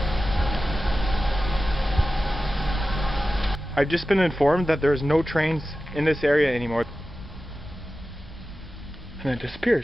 I've just been informed that there's no trains in this area anymore. And then it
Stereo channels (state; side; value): normal; both; correlation 0.94